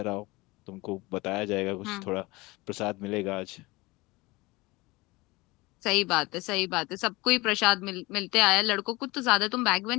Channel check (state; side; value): quieter; right; 22.5 dB